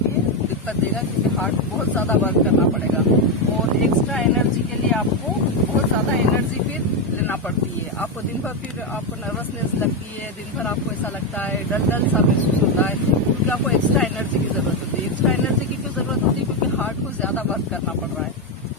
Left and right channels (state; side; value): normal; both; correlation 0.07